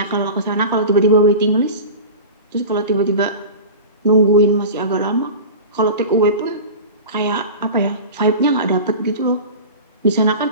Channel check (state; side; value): inverted; both; correlation -0.32